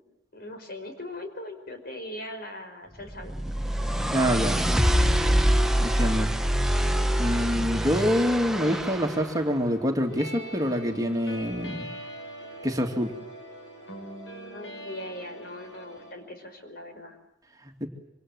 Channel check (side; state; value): both; normal; correlation 0.84